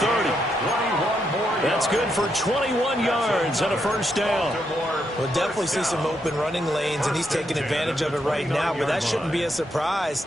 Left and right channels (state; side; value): normal; both; correlation 0.79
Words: That's good for 21 yards and a 1st down. We'll definitely see some open running lanes, and he's taking advantage of it right now, but that shouldn't be a surprise.